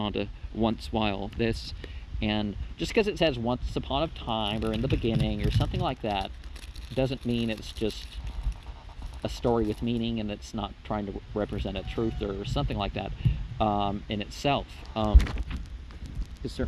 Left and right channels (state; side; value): identical; both; correlation 1.00